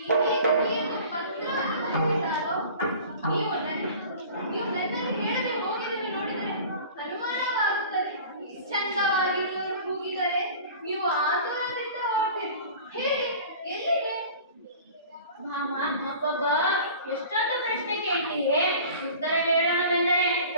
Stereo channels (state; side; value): inverted; both; correlation -0.42